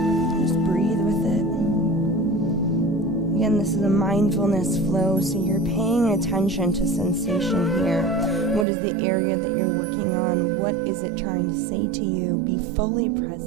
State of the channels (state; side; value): drops out; left; at 8.7 s